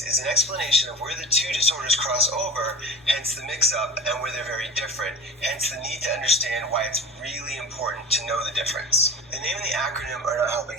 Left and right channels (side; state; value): both; normal; correlation 0.33